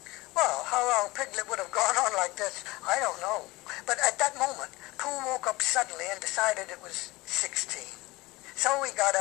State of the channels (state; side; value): quieter; right; 21.3 dB